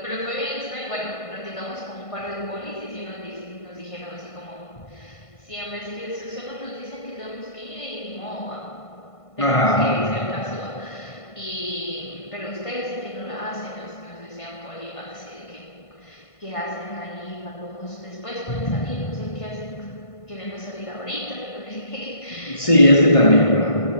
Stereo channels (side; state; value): right; late; 1.5 ms